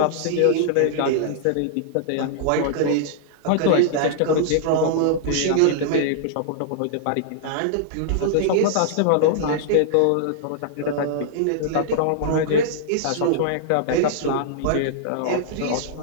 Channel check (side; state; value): both; different; correlation -0.02